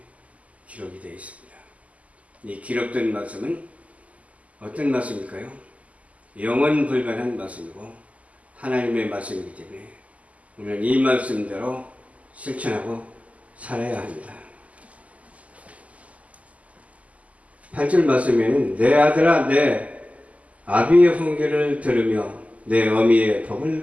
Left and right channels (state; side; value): late; left; 0.070 ms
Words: 기록이 되어 있습니다. 이 기록된 말씀은 어떤 말씀일까요? 영원 불변한 말씀이고 하나님의 말씀이기 때문에 우리는 이 말씀대로 실천하고 살아야 합니다. 8절 말씀에는 내 아들아 내 아비의 훈계를 들으며 내 어미의